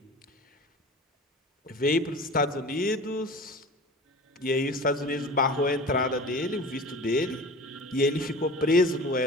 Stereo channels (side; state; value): both; normal; correlation 0.38